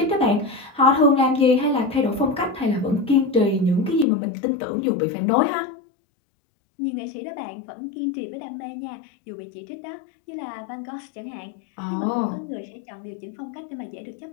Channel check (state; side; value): drops out; right; at 4.0 s